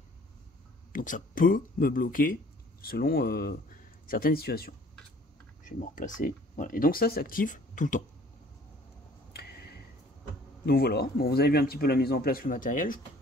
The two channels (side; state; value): both; normal; correlation 0.54